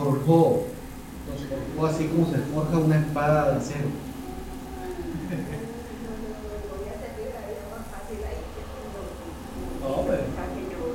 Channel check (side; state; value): both; identical; correlation 1.00